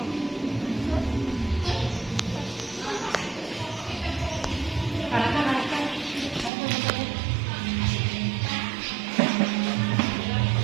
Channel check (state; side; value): drops out; left; at 6.5 s